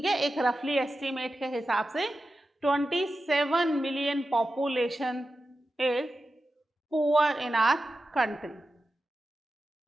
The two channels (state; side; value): normal; both; correlation 0.92